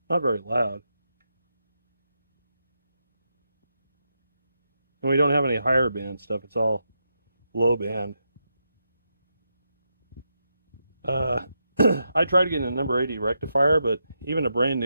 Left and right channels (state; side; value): inverted; both; correlation -0.84